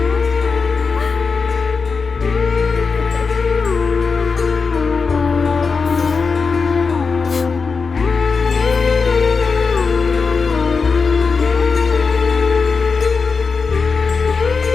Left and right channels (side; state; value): right; quieter; 4.9 dB